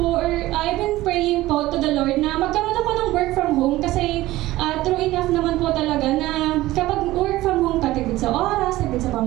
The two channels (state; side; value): quieter; left; 17.0 dB